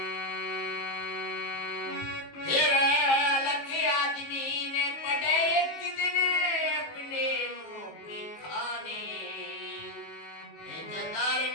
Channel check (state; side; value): late; right; 19 ms